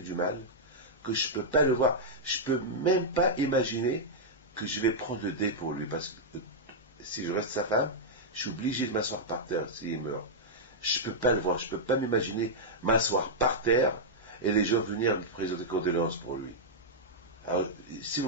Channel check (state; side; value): normal; both; correlation -0.07